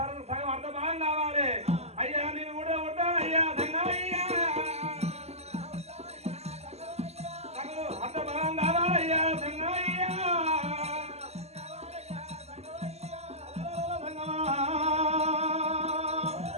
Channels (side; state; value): left; late; 0.30 ms